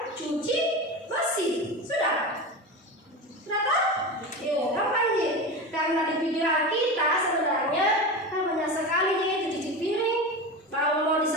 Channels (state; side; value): normal; both; correlation 0.25